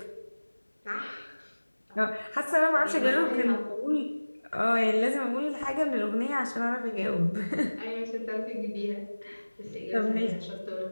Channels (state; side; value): inverted; both; correlation -1.00